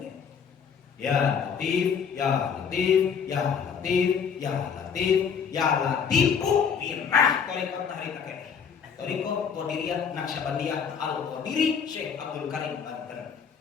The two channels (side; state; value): right; quieter; 6.8 dB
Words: Ya latif, ya latif, ya latif, ya latif, ya latifu birrah tarekat hari kakek. Tarekat Qadiriyah Naqsyabandiyah Al-Qadiri Syekh Abdul Karim Banten.